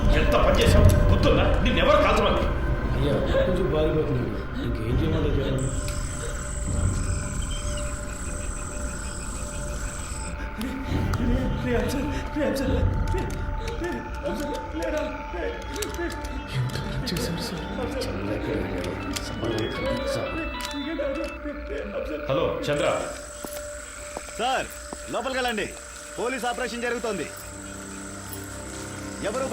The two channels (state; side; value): identical; both; correlation 1.00